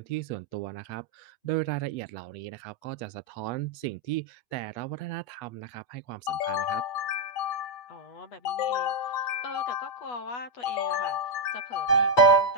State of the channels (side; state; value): right; late; 8.2 ms